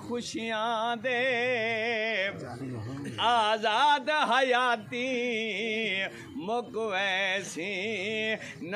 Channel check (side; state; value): both; identical; correlation 1.00